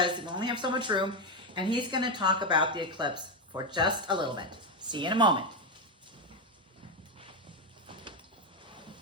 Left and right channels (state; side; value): normal; both; correlation 0.07